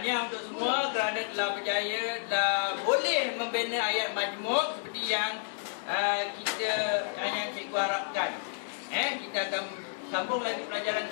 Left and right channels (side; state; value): right; silent; 57 dB below the other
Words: untuk semua kerana telah berjaya, telah boleh membina ayat majmuk seperti yang yang cikgu harapkan. Kita akan sambung lagi pelajaran